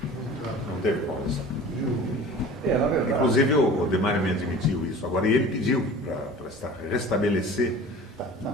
Não teve quórum. Na verdade. Inclusive o Demário me admitiu isso. Agora, e ele pediu para restabelecer.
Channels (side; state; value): both; normal; correlation 0.41